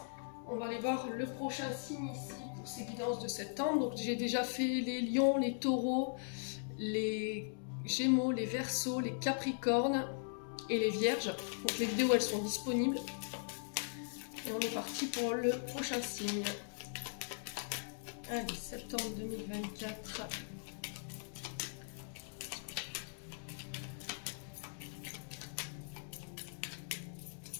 On va aller voir le prochain signe ici pour ces guidances de septembre. Donc j'ai déjà fait les lions, les taureaux, les gémeaux, les verseaux, les capricornes et les vierges. Donc les vidéos elles sont disponibles. Et on est parti pour le prochain signe. Allez, septembre 2024.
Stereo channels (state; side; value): silent; right; digital silence